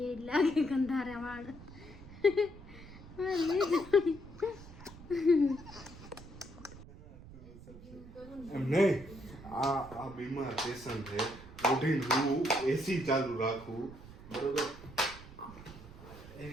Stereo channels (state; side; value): noise; right; rumble, 17 dB below the sound